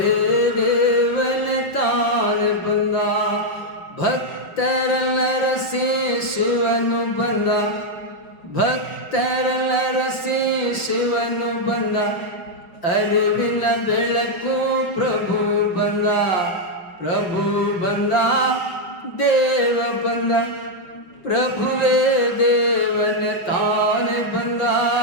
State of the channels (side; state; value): right; late; 5.7 ms